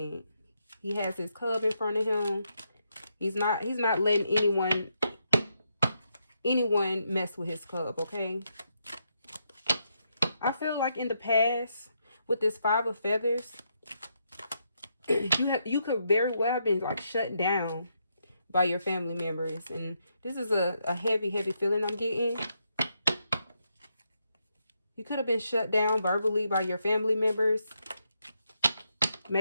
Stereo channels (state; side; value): inverted; both; correlation -0.80